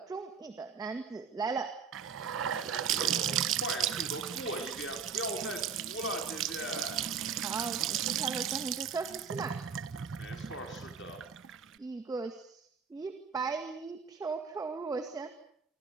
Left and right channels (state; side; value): quieter; left; 6.3 dB